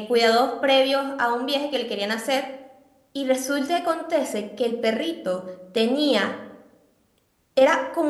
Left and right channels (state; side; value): identical; both; correlation 1.00